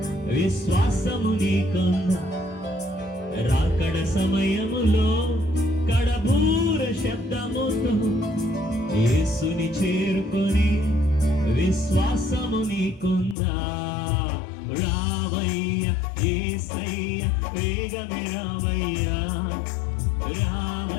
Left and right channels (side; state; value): right; drops out; at 13.4 s